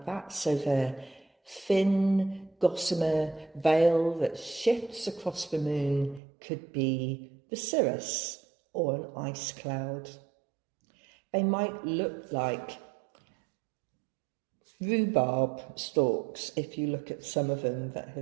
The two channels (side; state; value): left; drops out; at 6.2 s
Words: that. So the thin, gossamer veil that shifts across the moon could be the cirrus or an ice cloud. They might look like rhubarb stalks if you look at some of them that